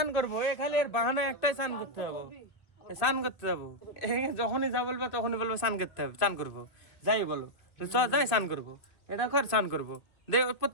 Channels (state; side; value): late; right; 2.1 ms